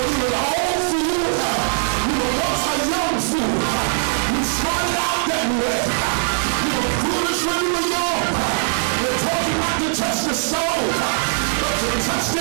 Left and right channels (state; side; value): silent; left; 56 dB below the other